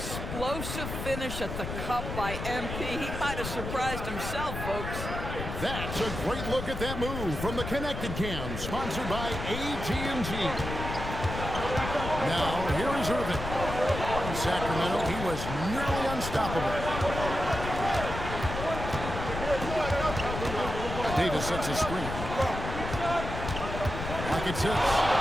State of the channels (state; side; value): noise; left; rumble, 6 dB below the sound